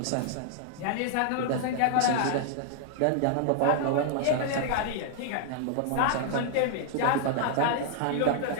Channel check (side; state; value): both; different; correlation 0.00